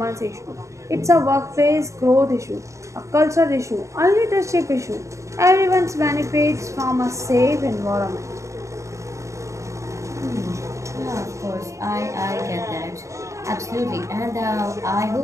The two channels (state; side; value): late; left; 0.15 ms